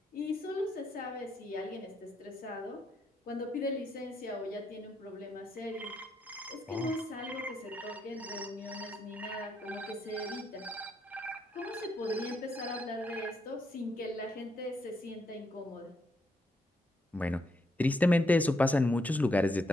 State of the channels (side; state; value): both; normal; correlation 0.77